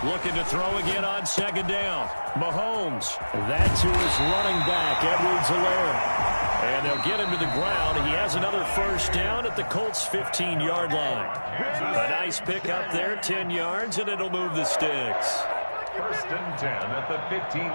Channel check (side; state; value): both; inverted; correlation -1.00